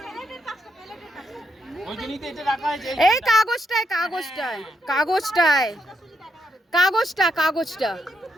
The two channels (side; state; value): both; normal; correlation 0.79